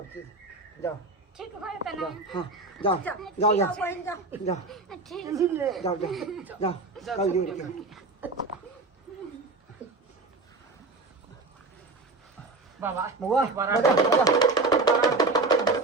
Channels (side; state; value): left; quieter; 3.4 dB